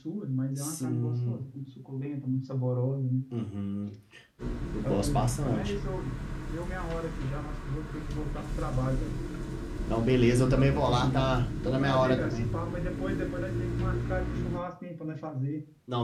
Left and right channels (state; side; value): identical; both; correlation 1.00